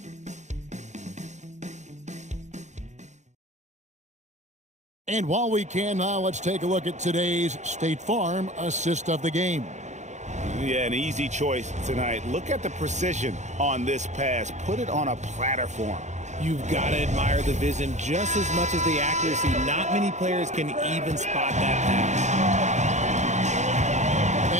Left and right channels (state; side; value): late; left; 0.34 ms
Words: And while we can now, let's take a look at today's State Farm assist of the game. Yeah, an easy choice tonight. Look at the precision on this pass. Put it on a platter form. You've got to admire the vision just as much as the accuracy. Not many players can even spot that pass.